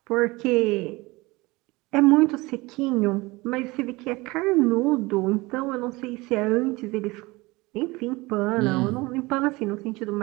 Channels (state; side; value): quieter; left; 22.5 dB